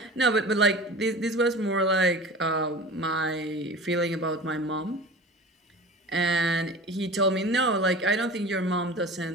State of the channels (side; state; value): both; normal; correlation 0.37